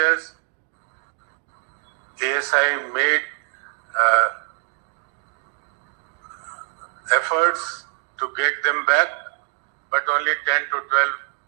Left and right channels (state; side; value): silent; left; digital silence